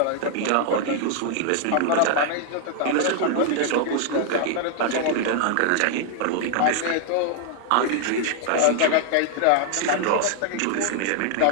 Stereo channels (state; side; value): different; both; correlation 0.00